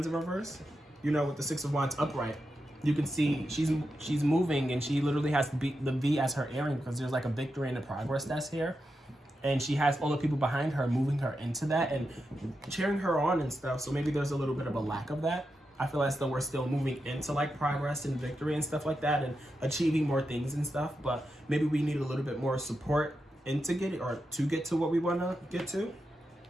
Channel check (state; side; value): normal; both; correlation 0.87